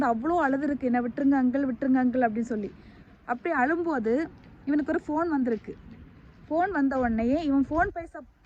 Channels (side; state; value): both; identical; correlation 1.00